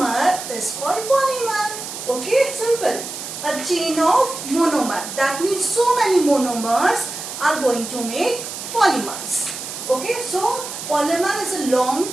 is called polymer. Okay, simple. A chain of monomer. That means so many monomers are going to make polymers. Okay, so polymer is a long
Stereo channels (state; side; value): noise; right; hiss, 8 dB below the sound